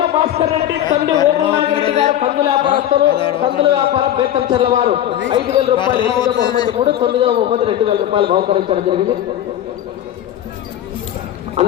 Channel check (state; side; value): quieter; right; 11.6 dB